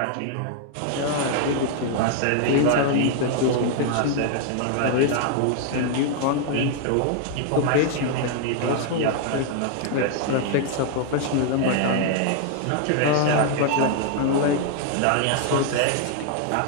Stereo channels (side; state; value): both; different; correlation 0.00